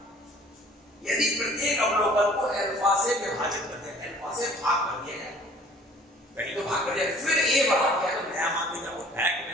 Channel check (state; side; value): normal; both; correlation 0.52